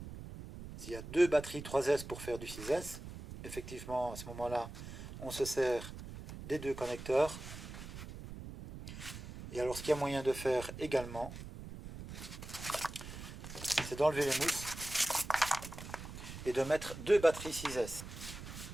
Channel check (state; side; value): noise; right; rumble, 11 dB below the sound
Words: S'il y a deux batteries 3S pour faire du 6S, effectivement à ce moment-là, on se sert des deux connecteurs. Et alors ce qu'il y a moyen de faire également, c'est d'enlever les mousses et de mettre deux batteries 6S.